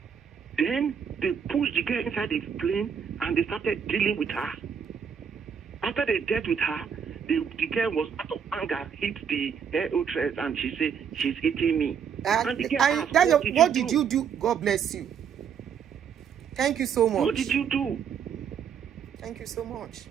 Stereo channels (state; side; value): quieter; left; 7.4 dB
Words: Then they pushed the girl inside the plane and they started dealing with her. After they dealt with her, the girl was out of anger, hit the air hostess, and she said, "She's hitting me." And the girl asked, what did you do? God bless you. Thank you so much. What did you do? Thank you so much.